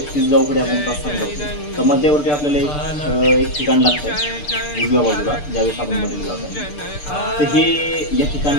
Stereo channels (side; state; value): right; late; 6.8 ms